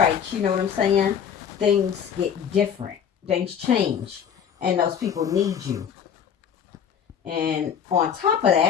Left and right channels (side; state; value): right; quieter; 8.0 dB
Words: you know what I'm saying, things get different, things change, and those people need you. And on top of